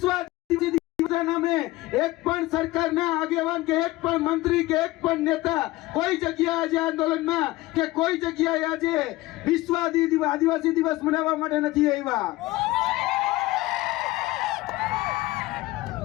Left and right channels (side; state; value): right; quieter; 18.7 dB